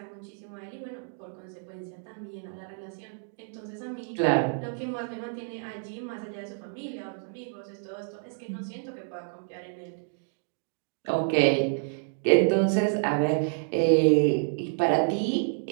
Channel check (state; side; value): silent; left; digital silence